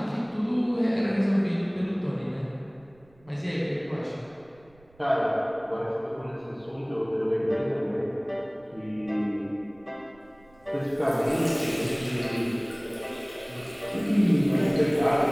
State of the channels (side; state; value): right; noise; rumble, 29 dB below the sound